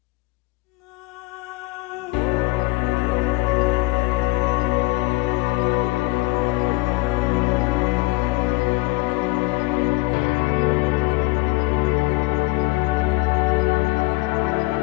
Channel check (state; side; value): quieter; right; 23.1 dB